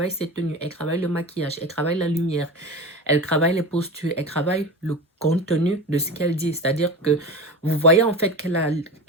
ses tenues, elle travaille le maquillage, elle travaille la lumière, elle travaille les postures, elle travaille le contenu de ce qu'elle dit. C'est-à-dire que vous voyez en fait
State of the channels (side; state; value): both; normal; correlation 0.28